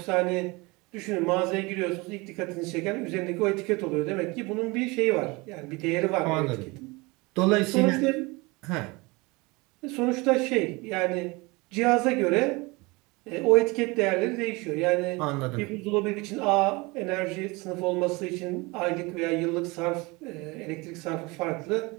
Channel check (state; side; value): quieter; left; 25.0 dB